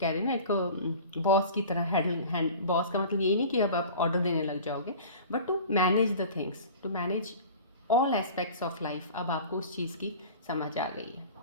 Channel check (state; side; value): inverted; both; correlation -0.40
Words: रहे हैं ना, एक बॉस की तरह बॉस का मतलब यही नहीं कि अब आप ऑर्डर देने लग जाओगे, but to manage the things, to manage all aspects of life. अब आपको उस चीज़ की समझ आ गई है।